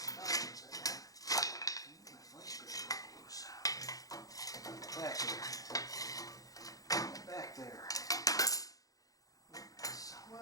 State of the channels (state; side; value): late; right; 0.17 ms